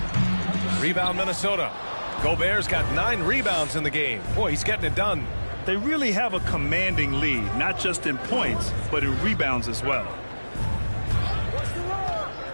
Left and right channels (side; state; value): both; inverted; correlation -1.00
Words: Rebound Minnesota. Gobert's got 9 rebounds in the game. Boy, he's getting it done. They really have a commanding lead, not just in points, but in rebounds as well.